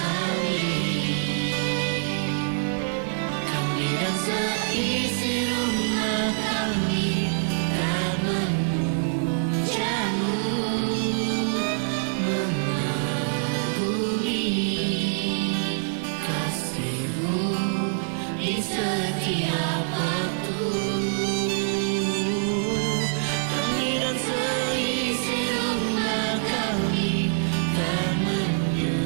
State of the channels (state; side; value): silent; left; 62 dB below the other